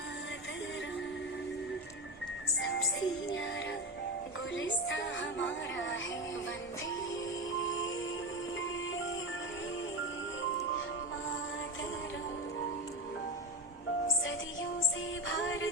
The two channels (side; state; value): both; normal; correlation 0.16